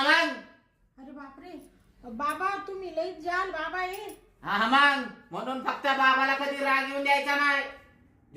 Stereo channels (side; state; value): both; identical; correlation 1.00